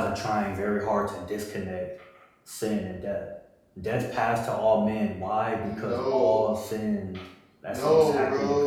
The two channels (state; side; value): identical; both; correlation 1.00